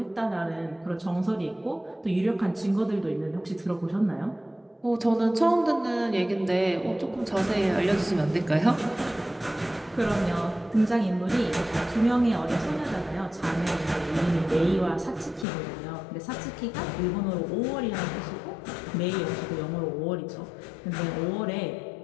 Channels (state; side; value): drops out; right; at 15.5 s